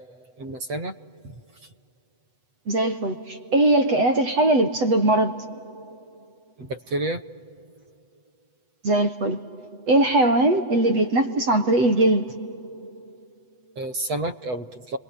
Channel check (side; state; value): left; late; 8.0 ms